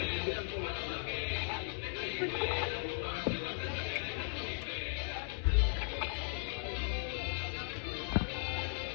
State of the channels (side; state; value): right; silent; 53 dB below the other